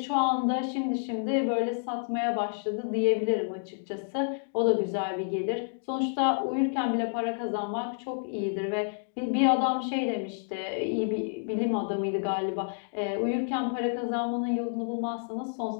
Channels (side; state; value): right; silent; digital silence